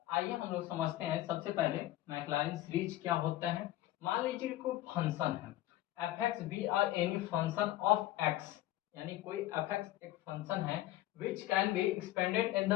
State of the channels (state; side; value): quieter; right; 15.1 dB